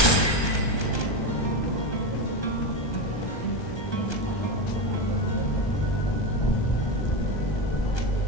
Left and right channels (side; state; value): right; late; 1.2 ms